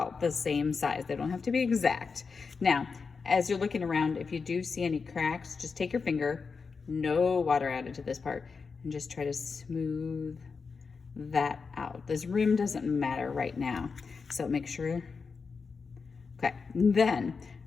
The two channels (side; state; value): right; quieter; 5.0 dB